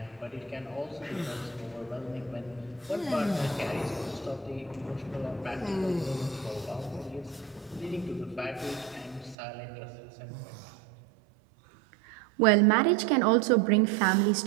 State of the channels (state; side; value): drops out; left; at 9.3 s